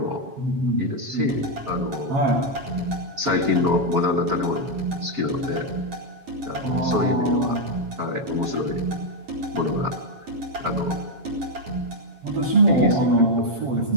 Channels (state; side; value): late; left; 7.3 ms